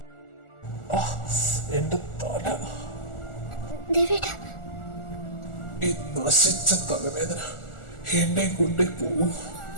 എന്റെ തല, ഈ നശിച്ച തലവേദന എന്നെ കൊണ്ടേ പോകും.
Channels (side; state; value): right; late; 1.4 ms